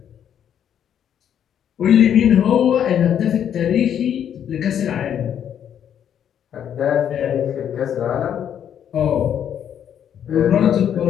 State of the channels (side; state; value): right; quieter; 9.3 dB